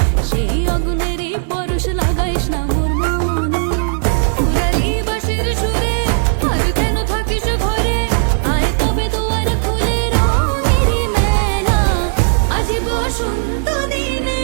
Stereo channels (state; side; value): silent; left; 65 dB below the other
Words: সেই আগুনেরই পরশ লাগাইস না মোর মনে। পুরালি বাঁশির সুরে আর কেন থাকিস ঘরে, আয় তবে দুয়ার খুলে রঙেরই মেলা, আজি বসন্ত দিনে